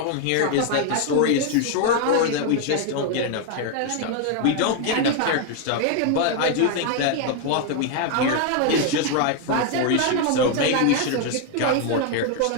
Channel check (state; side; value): different; both; correlation 0.01